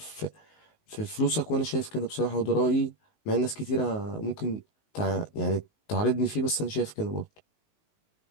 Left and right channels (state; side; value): late; right; 19 ms